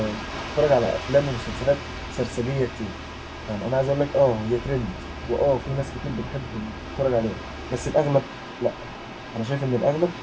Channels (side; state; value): both; identical; correlation 1.00